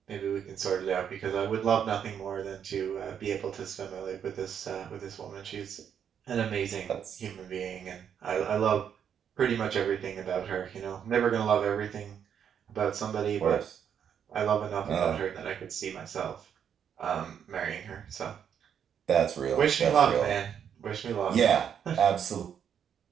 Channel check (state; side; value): quieter; left; 8.3 dB